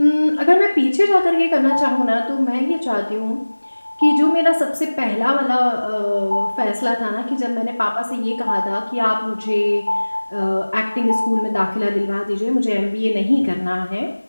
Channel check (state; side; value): inverted; both; correlation -1.00